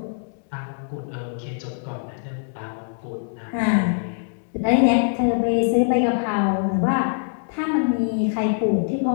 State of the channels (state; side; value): silent; right; digital silence